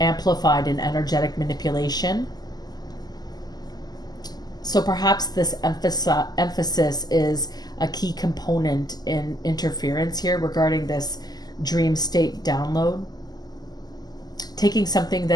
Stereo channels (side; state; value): right; late; 0.20 ms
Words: in energetic manipulation. So perhaps this emphasis is a key component in interference here regarding this dream state download. Taking something